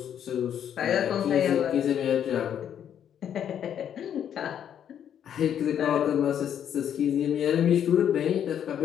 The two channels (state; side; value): quieter; right; 9.3 dB